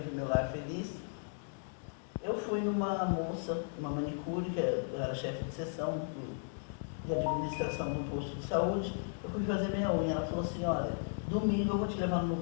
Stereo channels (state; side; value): silent; right; digital silence